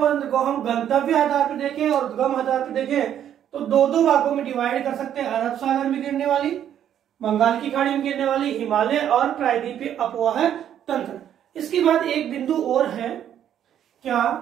तंत्र को हम गंतव्य आधार पर देखें और उद्गम आधार पर देखें तो 2 भागों में डिवाइड कर सकते हैं। अरब सागर में गिरने वाली, बंगाल की खाड़ी में गिरने वाली हिमालय और प्रायद्वीपीय अपवाह तंत्र। इसके बाद एक बिंदु और है क्या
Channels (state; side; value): quieter; left; 10.1 dB